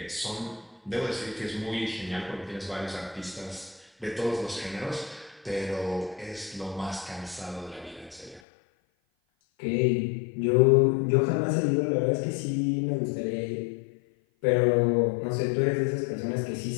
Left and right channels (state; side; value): drops out; right; at 8.4 s